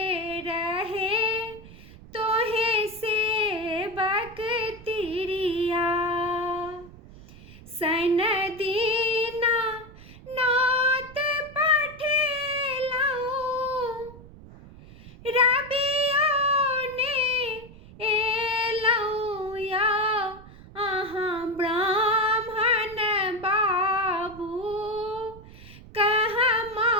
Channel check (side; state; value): right; noise; rumble, 19 dB below the sound